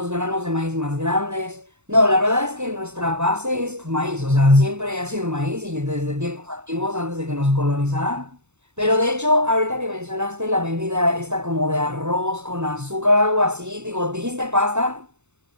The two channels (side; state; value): left; late; 0.82 ms